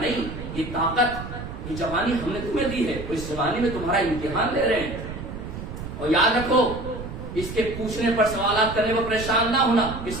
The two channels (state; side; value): noise; right; rumble, 9 dB below the sound